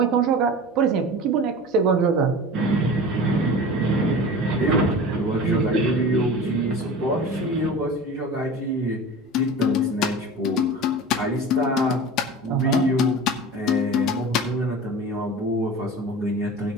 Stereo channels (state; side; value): normal; both; correlation 0.35